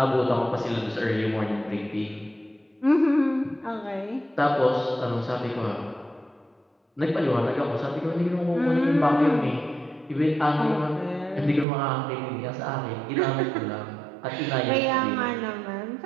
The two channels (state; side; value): drops out; left; at 11.7 s